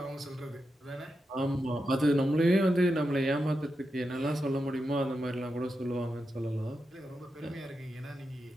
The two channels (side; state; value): both; normal; correlation 0.88